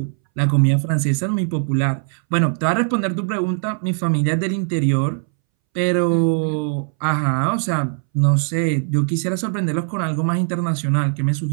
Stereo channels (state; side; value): silent; left; 64 dB below the other